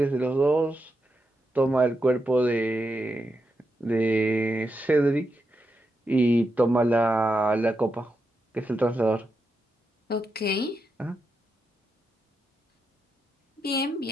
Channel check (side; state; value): both; normal; correlation 0.86